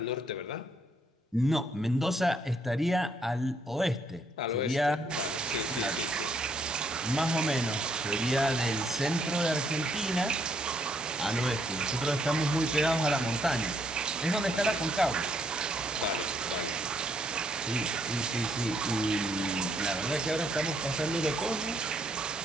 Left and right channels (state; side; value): normal; both; correlation 0.71